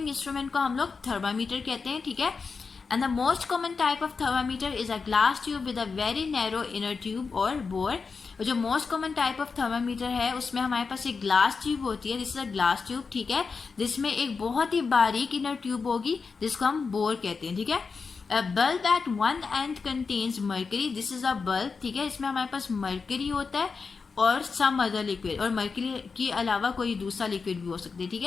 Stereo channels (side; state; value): right; quieter; 4.9 dB